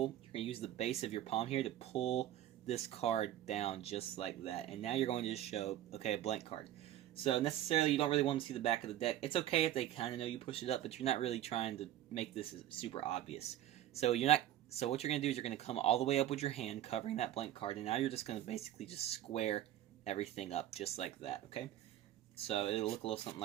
You're going to use the base of your palm here to pull this card down just like that. And now you're going to just show, okay, a blank card. So necessarily you don't really want to see the back of the deck. It's okay if they kind of know you push it up, but you're not really trying to make this super obvious. So what you're going to do is you're going to come all the way up with your hand covering that blank card, and now you're just going to basically just square everything up just like that, okay? So it'll look a little something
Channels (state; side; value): quieter; left; 12.7 dB